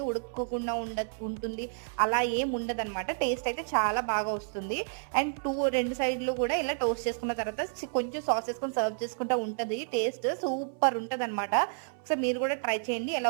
ఉడుకోకుండా ఉంటుంది, అలా ఏం ఉండదు అనమాట. టేస్ట్ అయితే చాలా బాగా వస్తుంది. అండ్ రెండు సైడ్లు కూడా ఇలా టోస్ట్ చేసుకున్న తర్వాత కొంచెం సాస్ వేసుకొని సర్వ్ చేసుకుంటా ఉంటుంది. టేస్ట్ సూపర్ ఉంటుంది అనమాట. సో మీరు కూడా ట్రై చేయండి. ఎలా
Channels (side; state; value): left; silent; 58 dB below the other